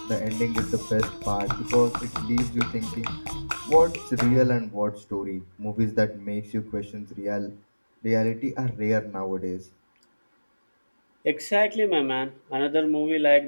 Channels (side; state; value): both; inverted; correlation -1.00